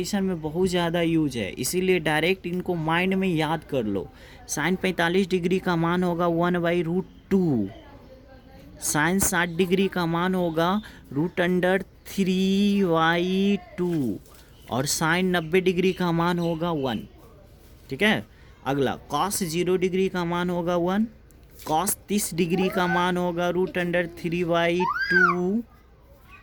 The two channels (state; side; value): identical; both; correlation 1.00